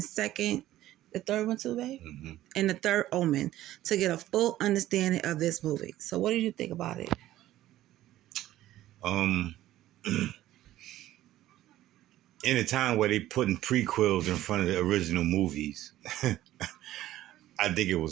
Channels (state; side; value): quieter; left; 14.3 dB